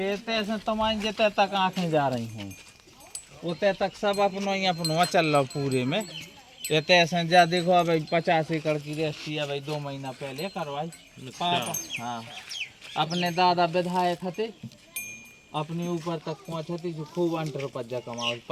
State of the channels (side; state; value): both; identical; correlation 1.00